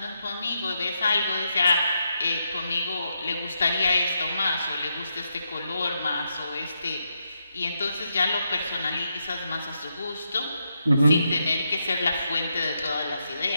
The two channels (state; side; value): inverted; both; correlation -0.82